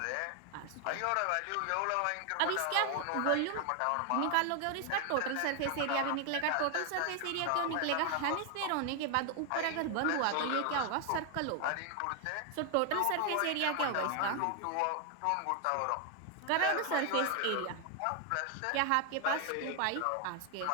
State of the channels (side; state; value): both; different; correlation 0.00